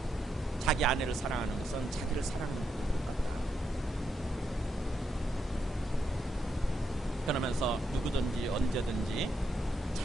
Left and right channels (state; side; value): normal; both; correlation 0.81